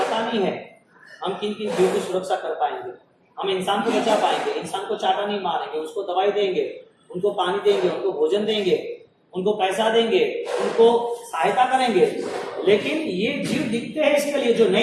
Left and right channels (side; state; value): both; identical; correlation 1.00